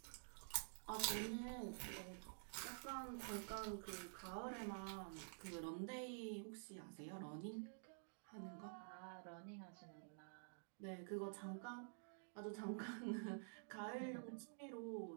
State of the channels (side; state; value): left; silent; digital silence